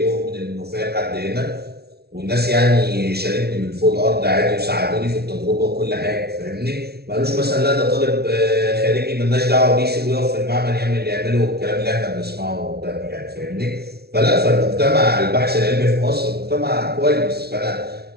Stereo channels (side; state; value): left; late; 0.46 ms